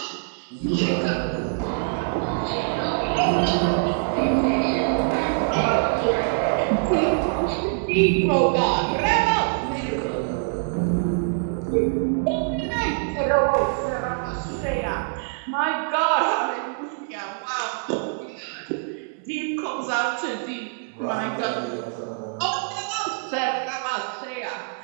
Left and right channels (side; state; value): left; silent; 62 dB below the other